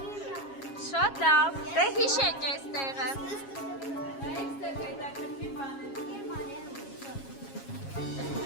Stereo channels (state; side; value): late; right; 7.3 ms